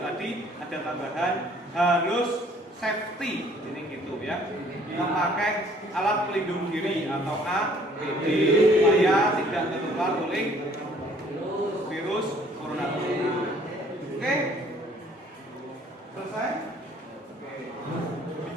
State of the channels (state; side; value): normal; both; correlation 0.58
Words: tadi ada tambahan harus safety, ini gitu ya, memakai alat pelindung diri atau APD supaya tidak tertular oleh virus corona tersebut. Oke, selesai.